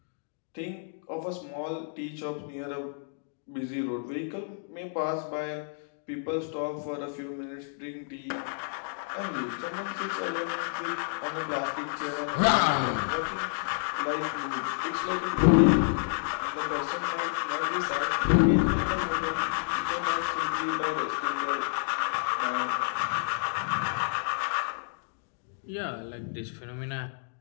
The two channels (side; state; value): right; silent; digital silence